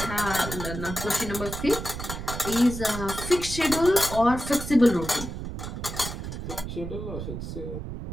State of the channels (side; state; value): right; noise; rumble, 7 dB below the sound